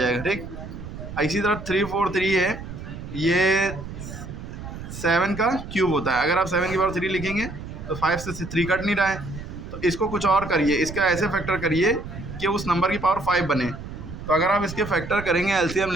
ठीक। इसी तरह 343 है, ये 7 का क्यूब होता है। अगर आप 7 की पावर 3 लिखेंगे तो 5 से 3 कट नहीं रहा है, तो इसको कुछ और करिए, इसका ऐसे फैक्टर करिए कि उस नंबर की पावर 5 बने। तो अगर आप इसके फैक्टर करेंगे, एलसीएम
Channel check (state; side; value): noise; right; rumble, 10 dB below the sound